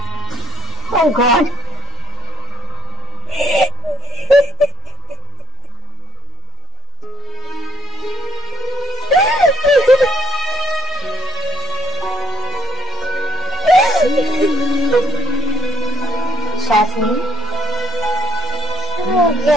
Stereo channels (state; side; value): normal; both; correlation 0.62